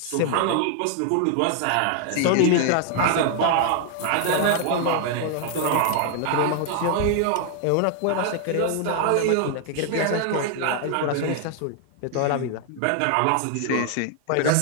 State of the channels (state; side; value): different; both; correlation 0.00